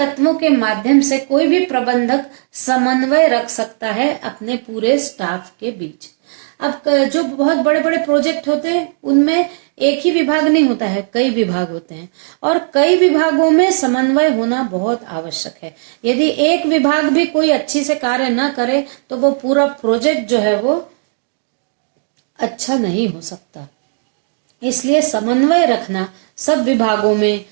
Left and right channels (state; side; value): silent; left; digital silence